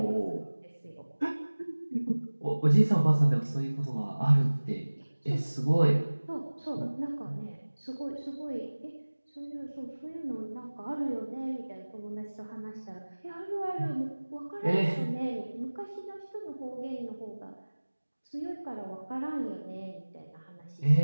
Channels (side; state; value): both; inverted; correlation -1.00